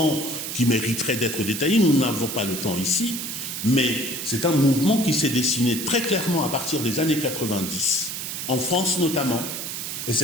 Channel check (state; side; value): noise; right; hiss, 5 dB below the sound